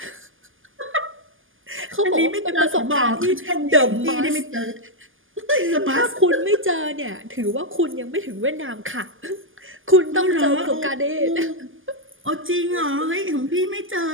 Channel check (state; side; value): late; left; 0.58 ms